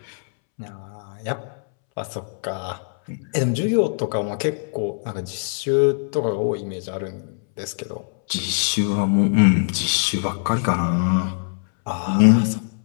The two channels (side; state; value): right; silent; 64 dB below the other